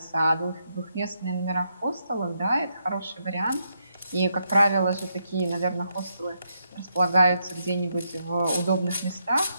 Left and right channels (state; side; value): inverted; both; correlation -0.80